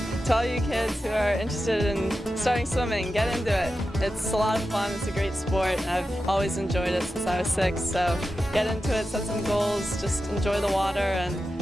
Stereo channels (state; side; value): normal; both; correlation 0.91